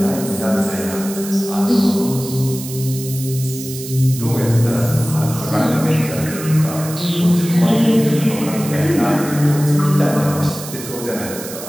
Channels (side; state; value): right; noise; hiss, 11 dB below the sound